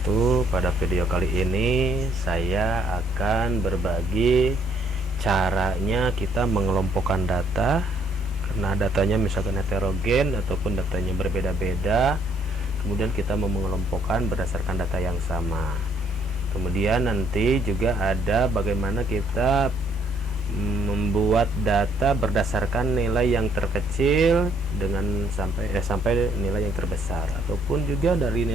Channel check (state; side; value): normal; both; correlation 0.67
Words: Pada video kali ini saya akan berbagi caranya kita mengelompokkan data, karena datanya misalkan heterogen ataupun datanya berbeda-beda. Kemudian kita mau mengelompokkan berdasarkan data yang sama. Kemudian nanti juga ada bagaimana kita membuat data berdasarkan nilai yang terkecil dengan sampai nilai yang terbesar, ataupun juga dari